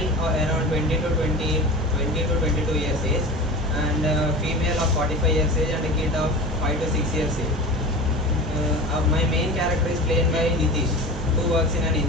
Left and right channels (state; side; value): normal; both; correlation 0.33